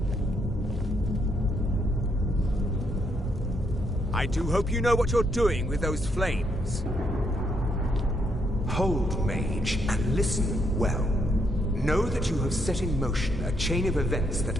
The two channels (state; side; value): normal; both; correlation 0.75